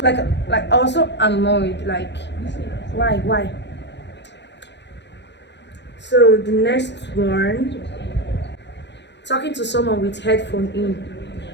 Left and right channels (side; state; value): right; late; 0.51 ms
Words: like I was so annoyed. Like, why? So the next one, talking to someone with headphone in.